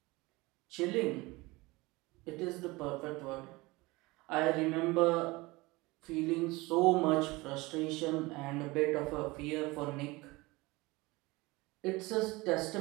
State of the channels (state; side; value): quieter; left; 22.5 dB